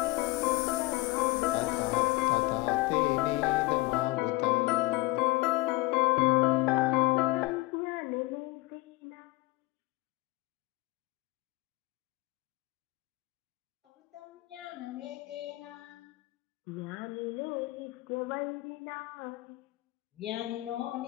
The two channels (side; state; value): right; quieter; 21.1 dB